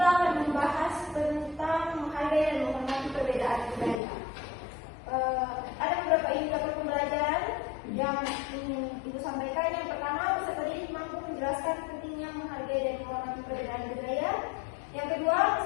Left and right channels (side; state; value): right; drops out; at 4.0 s